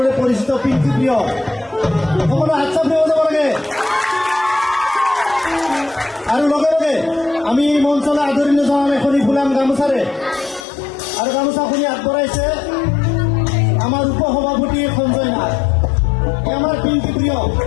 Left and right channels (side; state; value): right; drops out; at 10.7 s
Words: পৰিচিত পিংকি প্ৰিয় সকলো হাত চাপ দিব যাব লাগে। আৰু লগে লগে আমি এই মঞ্চলৈ আদৰণি জনাম এখনি ফুলাম গামোচাৰে। আৰু গামোচাখনি আগবঢ়াইছে আমাৰ উপসভাপতি সঞ্জয় নাথ, আমাৰ পিংকি প্ৰিয়।